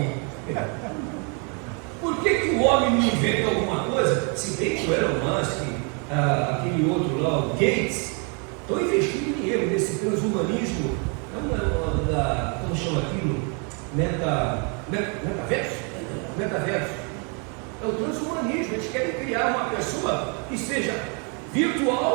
Por que o homem não inventa alguma coisa? Se bem que o Elon Musk, aquele outro lá, o Gates, estão investindo dinheiro nesse transhumanismo, como chama aquilo? Metaverso? Metaverso. É o transhumanismo. Eles querem criar uma pessoa que seja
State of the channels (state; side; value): quieter; left; 36.6 dB